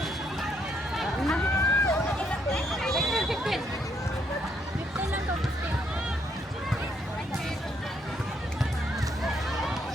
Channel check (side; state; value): both; normal; correlation 0.73